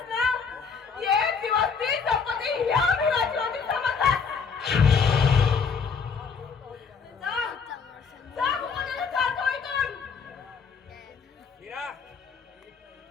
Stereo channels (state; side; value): quieter; right; 5.8 dB